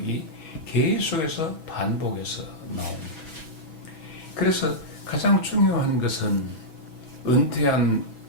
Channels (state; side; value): late; right; 6.1 ms